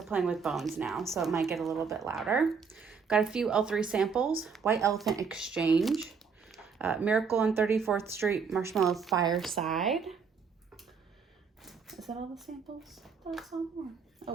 playing with bones now, so it might get a little bit louder. Got a few L3 samples. White Elephant Exchange. Miracle on 34th Street Marshmallow Fireside. Is that all the samples? That's all more. Oh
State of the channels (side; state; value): left; quieter; 5.8 dB